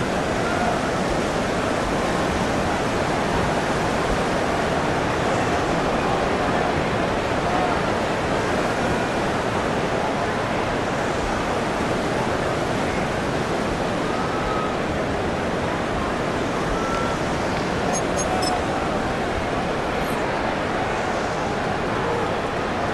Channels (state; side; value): identical; both; correlation 1.00